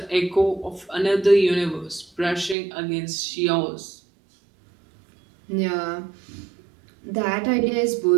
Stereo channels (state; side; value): drops out; left; at 2.6 s